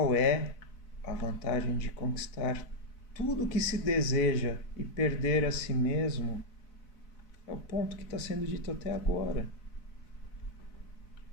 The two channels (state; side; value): late; right; 4.0 ms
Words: é a vantagem de conquistar tudo o que se deseja e perder a si mesmo? É o ponto que está sendo dito até agora.